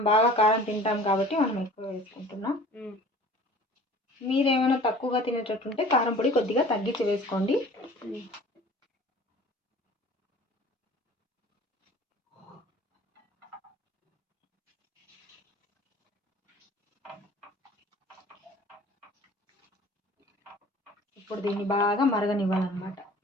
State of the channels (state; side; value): normal; both; correlation 0.46